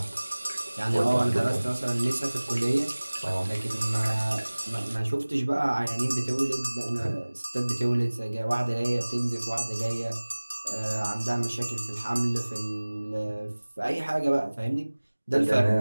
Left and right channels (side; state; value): both; inverted; correlation -1.00